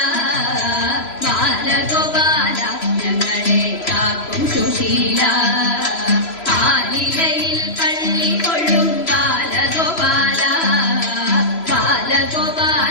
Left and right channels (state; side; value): late; right; 3.0 ms